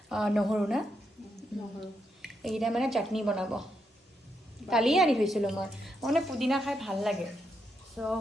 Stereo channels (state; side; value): normal; both; correlation 0.81